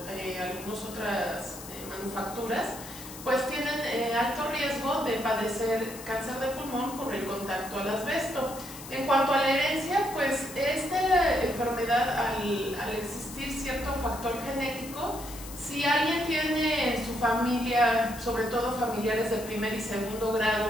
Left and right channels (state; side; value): noise; left; hiss, 14 dB below the sound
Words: algunas otras manufacturas, pues tienen alto riesgo de padecer cáncer de pulmón por el contacto al asbesto. En cuanto a la herencia, pues esta enfermedad, al existir cierto factor genético, si alguien tiene en su familia, sobre todo familiares de primer y segundo